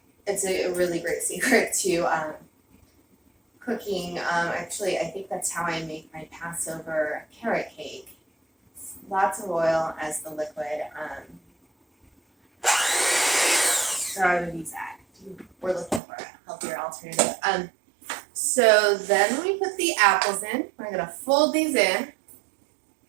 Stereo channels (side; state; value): left; drops out; at 16.0 s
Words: It's a really great secret to cooking. Actually, I think that's how I make my Passover carrot cake. Lots of oil as the liquid. So I would use that. We're looking for a healthier alternative. So then when we put the apples in, we're going to fold these in.